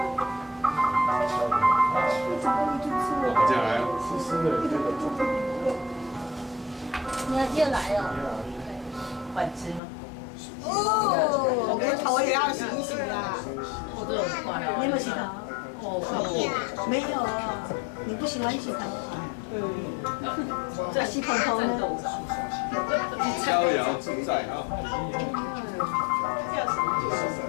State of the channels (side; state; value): right; drops out; at 9.8 s